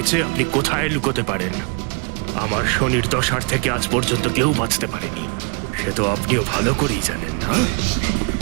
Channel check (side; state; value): left; quieter; 35.5 dB